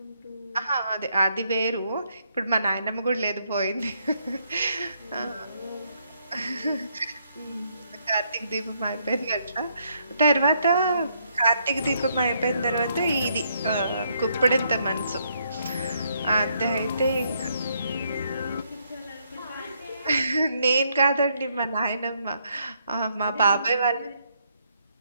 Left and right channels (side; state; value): both; inverted; correlation -0.73